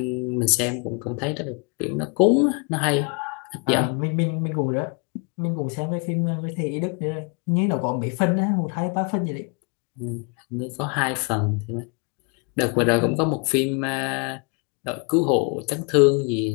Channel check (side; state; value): right; quieter; 35.4 dB